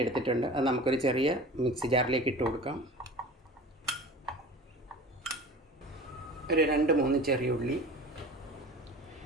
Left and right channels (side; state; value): both; normal; correlation 0.38